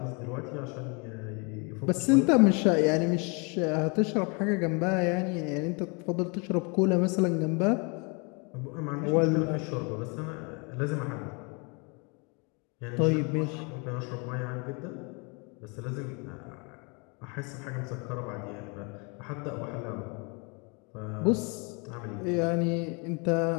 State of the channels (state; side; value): quieter; right; 32.3 dB